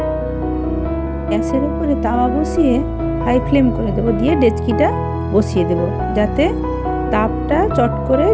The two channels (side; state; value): both; identical; correlation 1.00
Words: গ্যাসের উপরে তাওয়া বসিয়ে হাই ফ্লেম করে দেবো, দিয়ে ডেচকিটা বসিয়ে দেব যাতে তাপটা চট করে